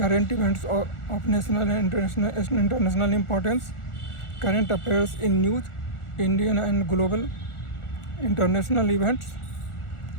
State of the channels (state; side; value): late; right; 1.4 ms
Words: events of national and international importance, current affairs in news, Indian and global, international events,